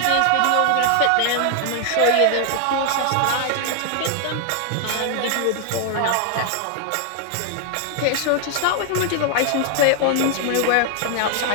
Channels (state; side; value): different; both; correlation 0.00